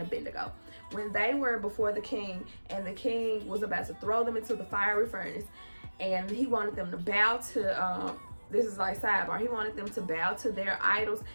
Abednego. When they were before the king, and the king was about to throw them into the fiery furnace, and he wanted them to bow to, this is like sidebar, he wanted them to bow to their idols,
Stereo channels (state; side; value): inverted; both; correlation -1.00